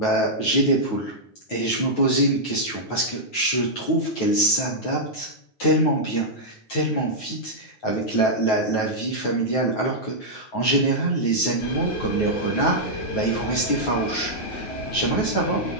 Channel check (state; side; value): late; right; 9.3 ms